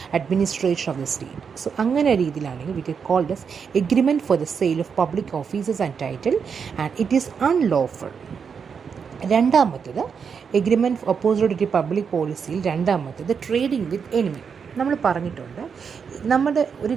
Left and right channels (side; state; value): left; quieter; 6.4 dB